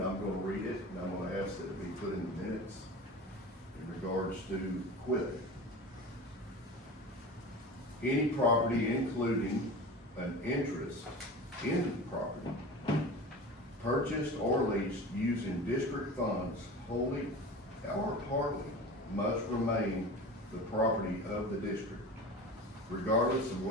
I'm gonna read it, and I'm gonna ask that it be put in the minutes in regards to equipment. Any property including an interest in the property purchased or leased using district funds wholly or partly must remain the property of the district, regardless of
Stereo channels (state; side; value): normal; both; correlation 0.33